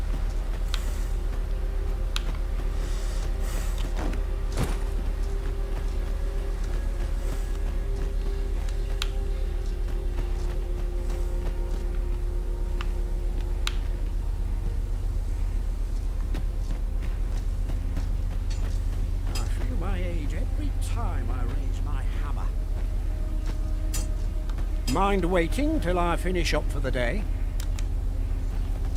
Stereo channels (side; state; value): both; identical; correlation 1.00